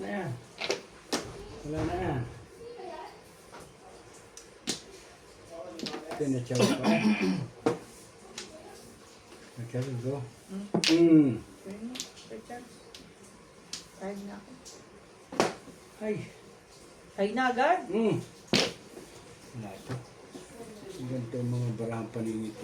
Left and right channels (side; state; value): both; identical; correlation 1.00